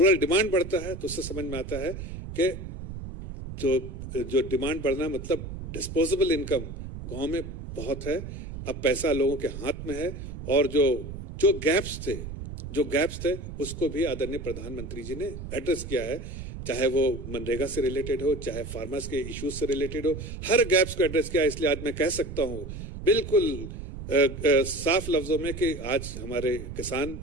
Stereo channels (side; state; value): right; noise; rumble, 9 dB below the sound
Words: डिमांड बढ़ता है, तो उससे समझ में आता है कि जो डिमांड बढ़ना मतलब डिस्पोजेबल इनकम गांव में बहुत है। अब पैसा लोगों के हाथ में है और जो गैप्स थे उसको भी आदरणीय प्रधानमंत्री जी ने एड्रेस किया है, चाहे वो मनरेगा से रिलेटेड हो, चाहे फार्मर्स के इश्यूज से रिलेटेड हो, हर गैप्स को एड्रेस किया। इसलिए आज मैं कह सकता हूं बिल्कुल साफ लफ्जों में कि आज हमारे किसान